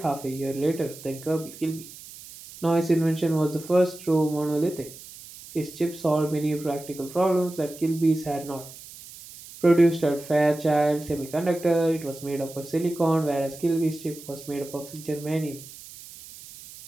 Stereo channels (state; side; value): noise; right; hiss, 17 dB below the sound